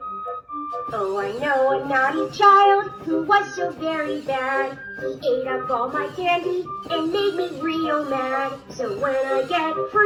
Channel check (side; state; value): both; identical; correlation 1.00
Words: Oh, I know a naughty child who was so very bad. He ate up all my candy and made me real mad. So when I get